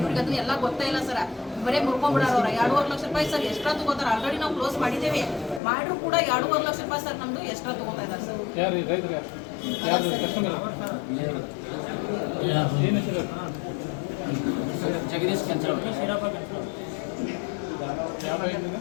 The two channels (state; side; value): drops out; right; at 5.6 s